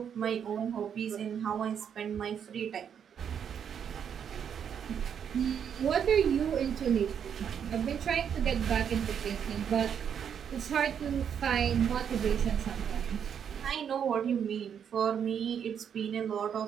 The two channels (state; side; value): quieter; left; 8.1 dB